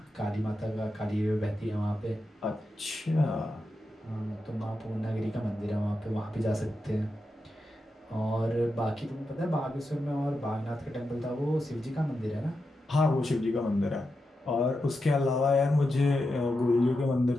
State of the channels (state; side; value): normal; both; correlation 0.88